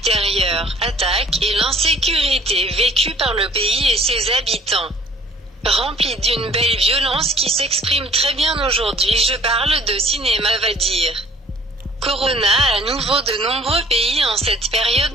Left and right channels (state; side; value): normal; both; correlation 0.54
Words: attaques et l'insécurité vécue par le pays et ses habitants. Rempli d'une belle violence qui s'exprime très bien aujourd'hui, je parle de cinéma va dire. Corona à nouveau de nombreux pays en cette période